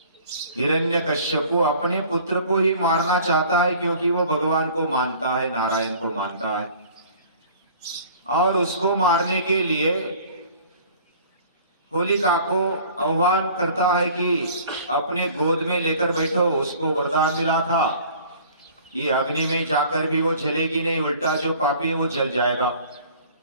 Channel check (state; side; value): inverted; both; correlation -0.49